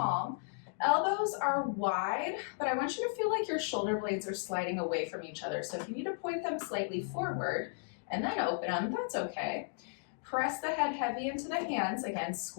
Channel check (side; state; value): right; silent; digital silence